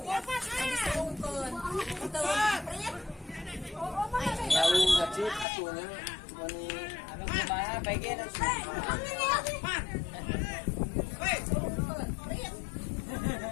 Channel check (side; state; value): right; drops out; at 5.5 s